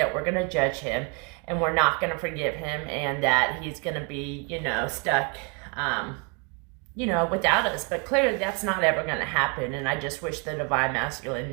we're going to judge him and we're not going to forgive him, and that he's going to be, stuck, without us. But clearly that's not ever going to happen. And I just wish the Divine Masculine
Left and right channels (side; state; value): left; quieter; 34.5 dB